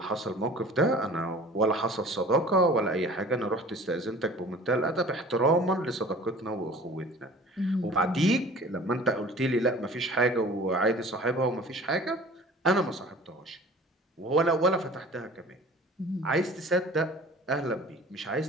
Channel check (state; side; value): normal; both; correlation 0.45